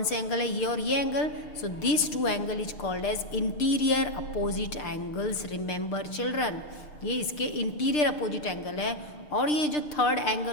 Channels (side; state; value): right; late; 6.7 ms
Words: से एंगल है, ये और ये angle. So this two angle is called as interior opposite angles. Remember children, ये इसके इंटीरियर अपोजिट एंगल है. और ये जो third